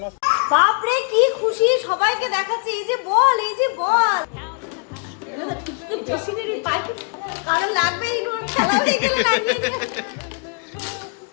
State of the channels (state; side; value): quieter; right; 39.9 dB